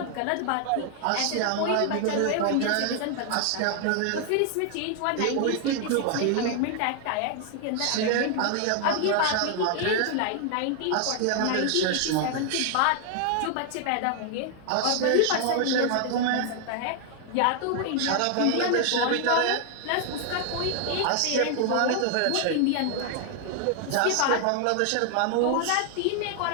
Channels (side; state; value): both; different; correlation 0.00